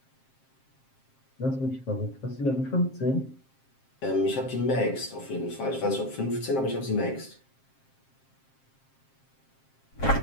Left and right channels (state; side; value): late; right; 7.5 ms